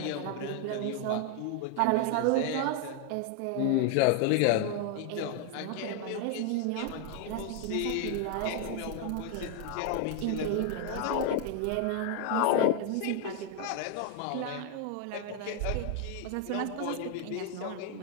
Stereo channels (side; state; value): both; different; correlation 0.00